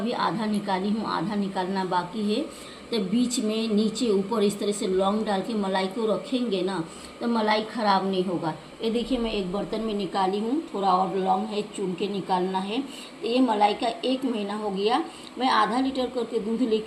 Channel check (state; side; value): identical; both; correlation 1.00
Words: आधा निकाली हूँ, आधा निकालना बाकी है। तो बीच में नीचे ऊपर इस तरह से लौंग डाल के मलाई को रखेंगे ना तो मलाई ख़राब नहीं होगा। ये देखिए मैं एक बर्तन में निकाली हूँ, थोड़ा और लौंग है, चुन के निकालना है। तो ये मलाई का 1 महीना हो गया। मैं आधा लीटर करके दूध